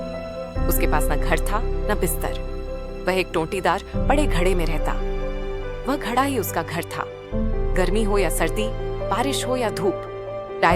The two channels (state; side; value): identical; both; correlation 1.00